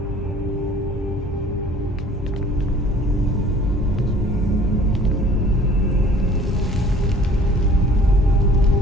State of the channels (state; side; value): normal; both; correlation 0.51